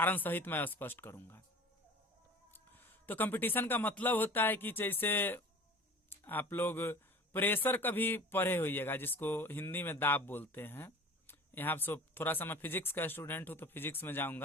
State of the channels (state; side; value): normal; both; correlation 0.41